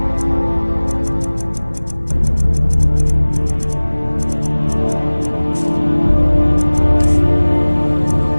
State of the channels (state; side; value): inverted; both; correlation -1.00